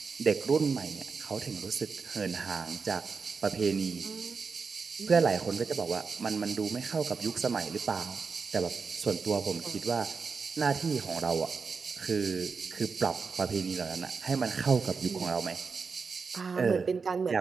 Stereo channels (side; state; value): left; quieter; 5.1 dB